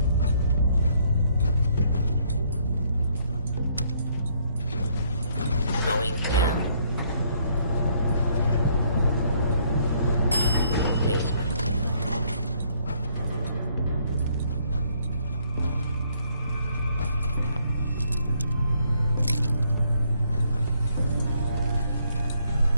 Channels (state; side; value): inverted; both; correlation -0.68